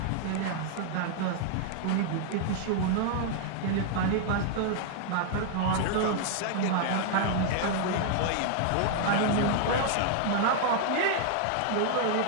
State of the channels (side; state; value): both; different; correlation 0.00